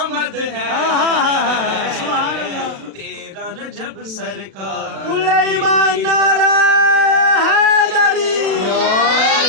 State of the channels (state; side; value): late; left; 36 ms